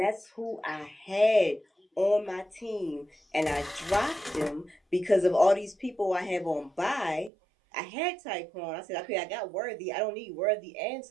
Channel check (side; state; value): left; drops out; at 7.3 s